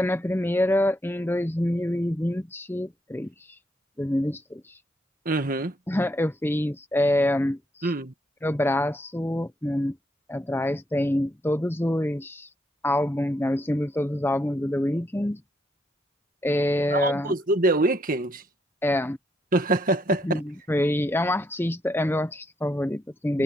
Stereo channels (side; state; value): both; normal; correlation 0.76